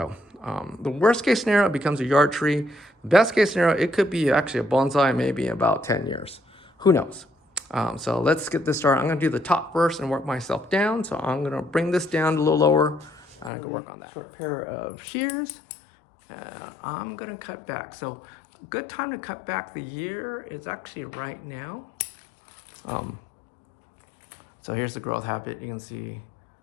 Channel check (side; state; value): right; drops out; at 13.5 s